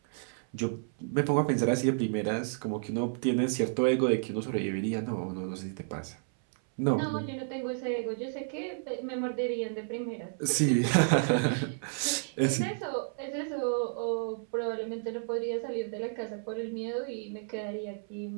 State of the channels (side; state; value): left; silent; 57 dB below the other